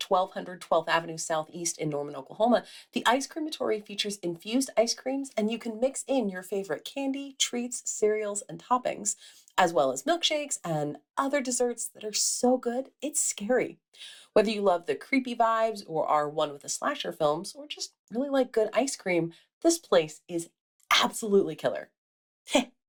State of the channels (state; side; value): identical; both; correlation 1.00